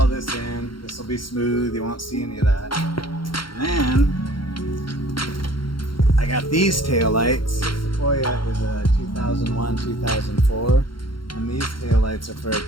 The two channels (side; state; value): right; late; 0.73 ms